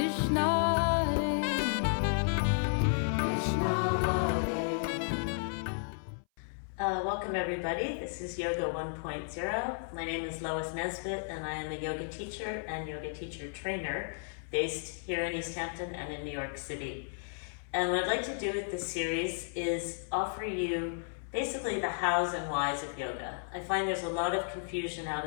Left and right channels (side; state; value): right; silent; 56 dB below the other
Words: Hare Welcome everybody. This is Yoga 1.0. My name is Lois Nesbitt and I am a yoga teacher and yoga teacher trainer based here in East Hampton and in New York City. And what I'd like to do with this series is offer you basically the hows and whys of yoga. I find there's a lot of confusion out